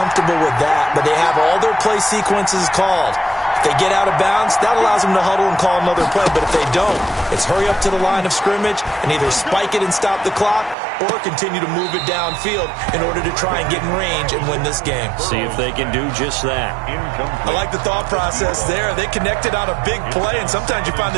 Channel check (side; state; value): left; drops out; at 10.8 s